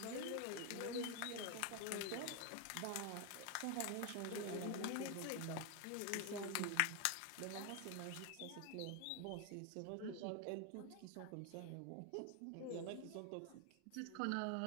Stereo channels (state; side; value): different; both; correlation 0.01